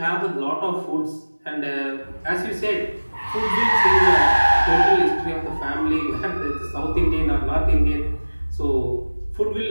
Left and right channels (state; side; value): inverted; both; correlation -1.00